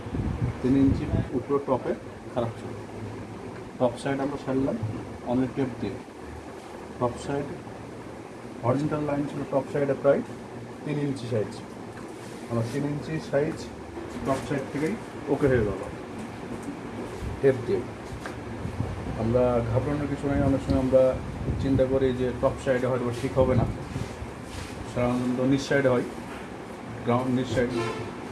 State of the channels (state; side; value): identical; both; correlation 1.00